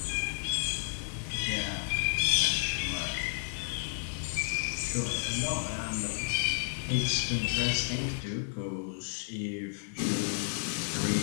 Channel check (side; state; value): right; silent; 56 dB below the other